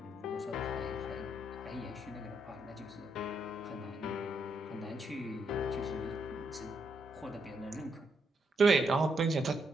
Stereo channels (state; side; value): normal; both; correlation 0.77